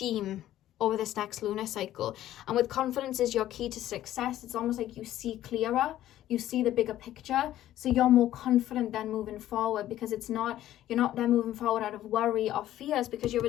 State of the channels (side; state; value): right; quieter; 13.2 dB